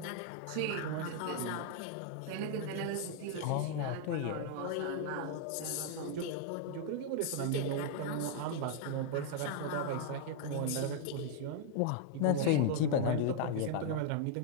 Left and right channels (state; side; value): different; both; correlation -0.01